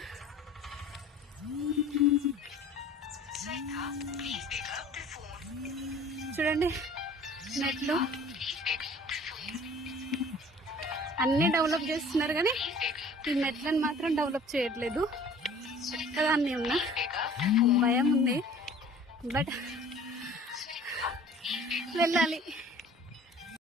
చూడండి, నెట్లు అన్నీ డెవలప్ చేస్తున్నారు కానీ ఈ నెట్లను మాత్రం డెవలప్ చేయట్లేదు. ఒక్కదాన్ని ఉన్నా, భయం ఉంది. బట్ వెళ్ళాలి.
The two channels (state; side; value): normal; both; correlation 0.49